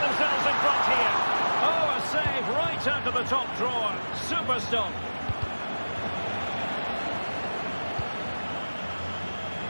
themselves in front here? Oh, a save right out of the top drawer. Super stop.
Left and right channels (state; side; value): inverted; both; correlation -1.00